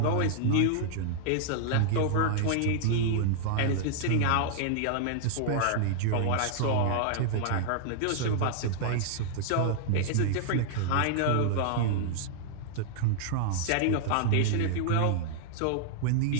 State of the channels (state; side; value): different; both; correlation -0.01